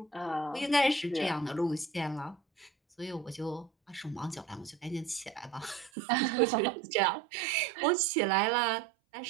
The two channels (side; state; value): left; drops out; at 5.9 s